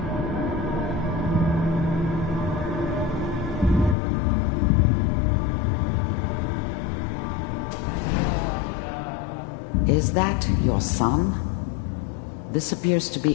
Is that your son? This appears to be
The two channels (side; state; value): right; drops out; at 4.0 s